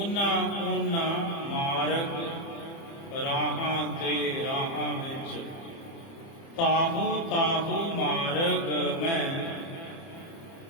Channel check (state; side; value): late; right; 30 ms